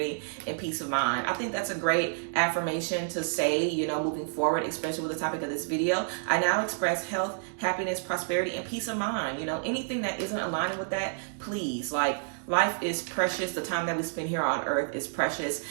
and peace of mind. I think that's a great affirmation to say, you know, moving forward, especially with the topic of this video. I now express health, happiness, prosperity, and peace of mind. You know, anything that isn't aligning with that, please, like, life is precious. The time that we spend here on earth is precious.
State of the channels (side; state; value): left; silent; digital silence